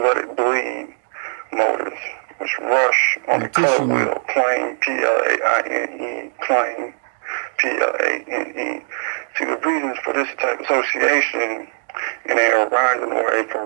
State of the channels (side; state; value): left; silent; digital silence